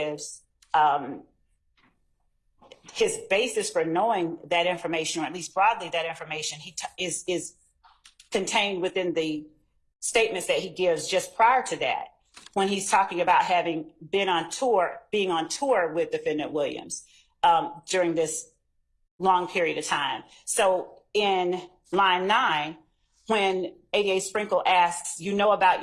his basis for knowing that information, or at least broadly that information, is contained within the statements that he gives just prior to that, when he's talking about having been on tour, being on tour with Defendant Williams during this long period of time. So in line 9, when ADA Sprinkle asks, you know about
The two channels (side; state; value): both; identical; correlation 1.00